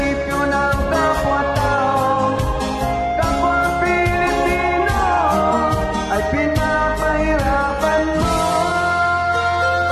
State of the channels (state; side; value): identical; both; correlation 1.00